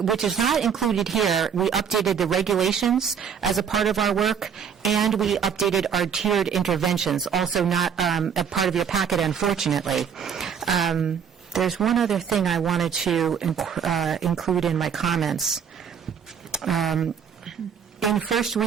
which is not included here, we updated the regulations as a part of our work, and we updated our tiered interventions, also not a part of your packet, unfortunately. There's one other thing I wanted to include in my comments. In first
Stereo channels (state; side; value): quieter; left; 7.4 dB